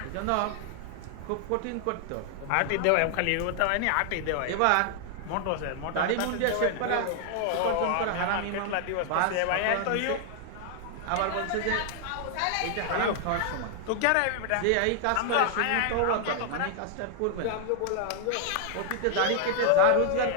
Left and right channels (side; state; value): both; different; correlation 0.00